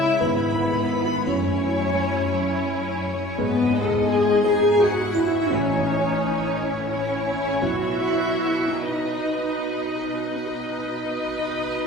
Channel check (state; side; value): normal; both; correlation 0.51